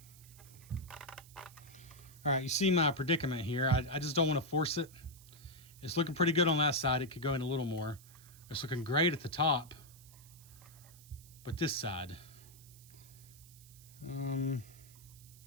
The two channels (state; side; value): noise; right; hiss, 22 dB below the sound